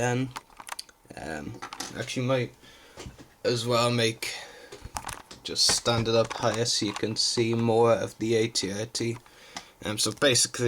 Actually might as well just stand it up higher so you can see more of the AT-AT. So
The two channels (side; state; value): both; identical; correlation 1.00